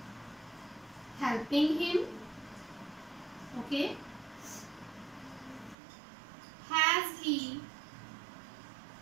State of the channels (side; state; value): left; drops out; at 5.8 s